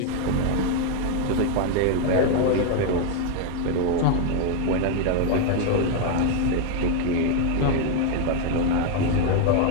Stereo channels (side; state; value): both; different; correlation 0.01